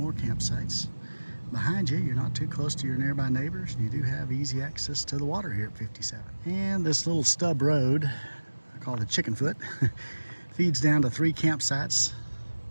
campsites. Behind you, you're not too close to your nearby neighbors. You do have easy access to the water here at 57. And this little stub road, I call it the chicken foot, feeds down to 3 campsites.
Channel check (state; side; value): inverted; both; correlation -1.00